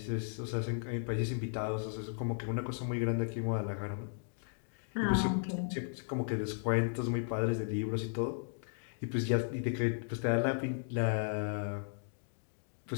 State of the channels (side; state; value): right; silent; digital silence